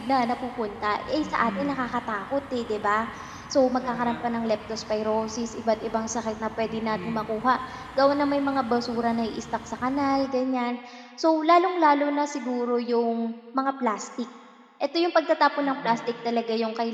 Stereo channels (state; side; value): identical; both; correlation 1.00